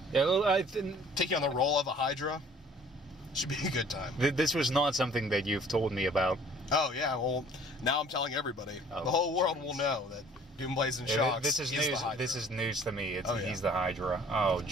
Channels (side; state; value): both; normal; correlation 0.53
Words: taking on the role of a Hydra should be a good time. This was not something that you've told me about. Oh, yeah. Well, now I'm telling everybody. The whole world will know that Doomblazing Shocks is the Hydra. This is news to me. He's the Hydra. Oh,